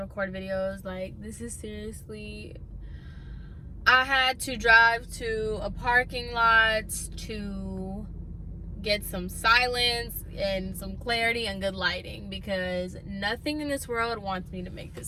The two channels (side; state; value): both; identical; correlation 1.00